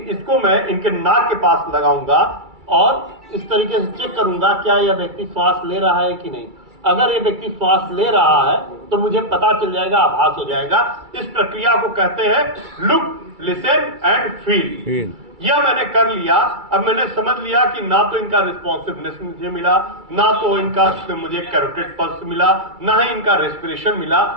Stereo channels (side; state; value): left; late; 2.3 ms